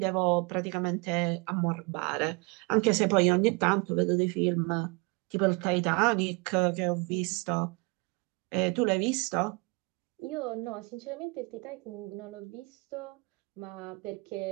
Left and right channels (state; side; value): quieter; left; 29.4 dB